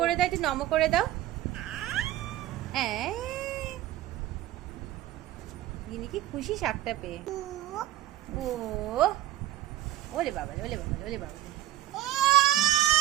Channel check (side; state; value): left; quieter; 14.1 dB